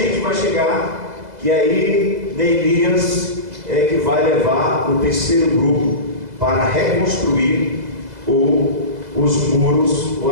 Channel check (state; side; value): late; left; 2.0 ms